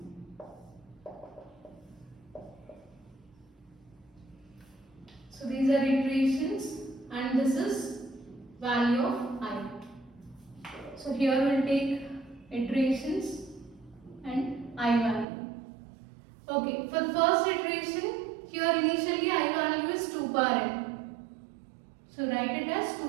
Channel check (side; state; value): left; drops out; at 15.2 s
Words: So these are iterations and this is value of I. So here we'll take iterations and I value. Okay, for the first iteration, here initially I value is 2 power n. So write it as